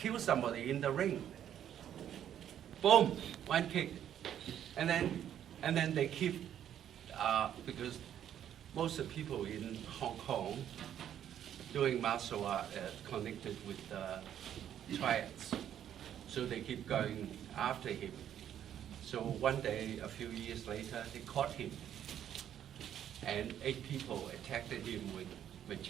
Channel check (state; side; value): quieter; left; 10.2 dB